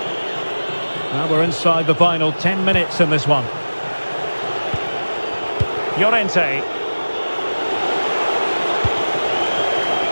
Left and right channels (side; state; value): both; inverted; correlation -1.00